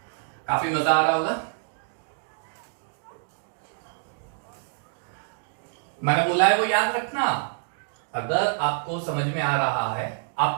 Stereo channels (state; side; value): silent; left; digital silence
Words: काफी मजा आ रहा होगा मैंने बोला है वो याद रखना अगर आपको समझ में आ रहा है